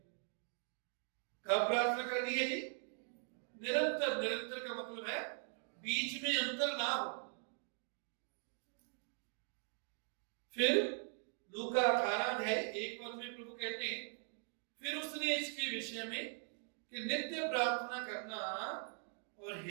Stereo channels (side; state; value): left; silent; 50 dB below the other